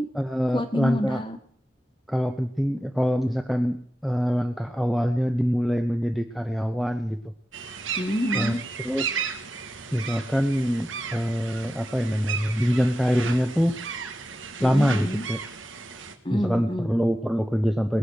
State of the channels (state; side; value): normal; both; correlation 0.91